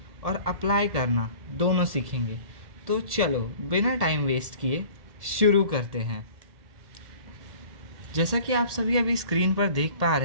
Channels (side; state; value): left; late; 1.7 ms